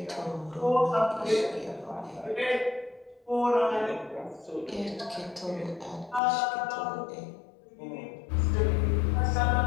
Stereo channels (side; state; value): right; drops out; at 6.2 s